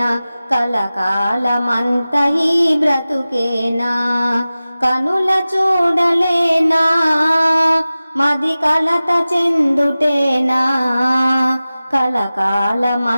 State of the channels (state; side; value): inverted; both; correlation -0.97